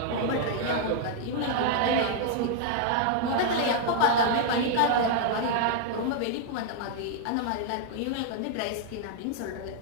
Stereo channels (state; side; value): different; both; correlation -0.01